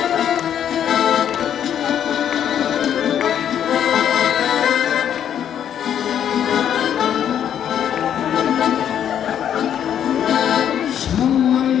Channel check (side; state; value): right; quieter; 9.5 dB